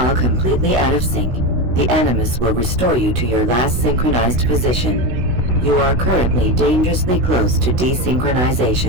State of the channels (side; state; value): left; late; 16 ms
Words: completely out of sync, the Animus will restore you to your last synchronized position. You are currently dangerously close to